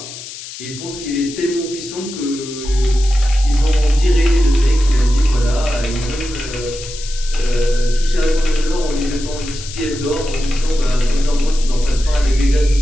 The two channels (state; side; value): noise; left; hiss, 12 dB below the sound